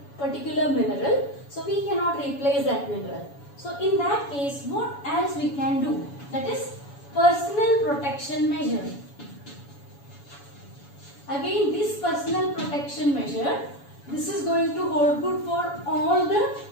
particular mineral, so we cannot replace that mineral. So in that case, what else we can do? That is personal protection measure. Again, this personal protection measure, this is going to hold good for all the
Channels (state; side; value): late; right; 7.1 ms